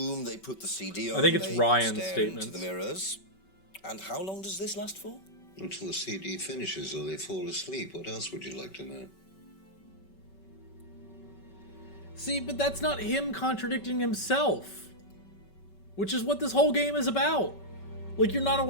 they put the CD on, I think it's they Ryan's stare statements. into the mirrors. And how long does this last for? Until the CD finishes or they fall asleep. What else would you like to know? See, but that's not him contradicting himself. Which is what this whole game is about. Like, you're not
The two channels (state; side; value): late; right; 5.2 ms